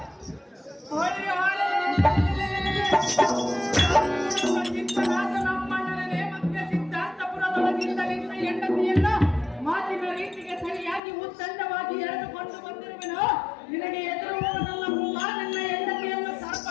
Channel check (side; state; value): right; drops out; at 11.0 s